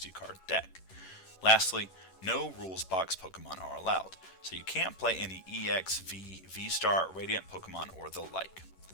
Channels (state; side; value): late; right; 11 ms